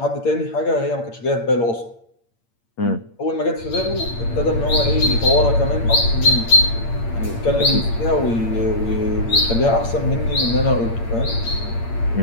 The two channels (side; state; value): right; late; 8.7 ms